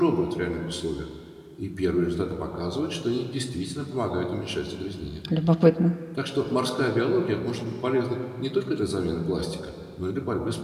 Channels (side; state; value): both; identical; correlation 1.00